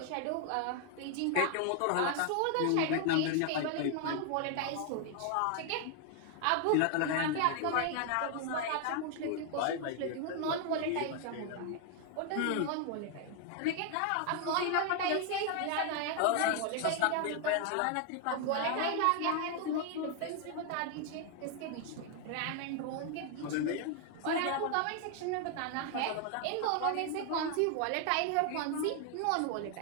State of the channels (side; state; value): both; different; correlation 0.00